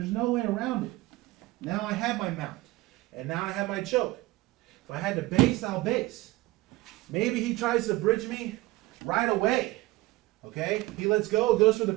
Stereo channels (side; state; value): left; quieter; 19.3 dB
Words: no way around it. Now I have my mount. And now I have my choke. If I had to base, I'll base. Maybe he tries to bridge me right away. Okay? He lets go, goes for the